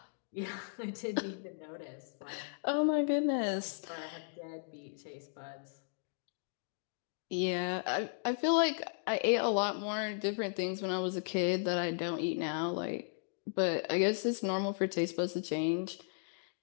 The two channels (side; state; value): right; silent; digital silence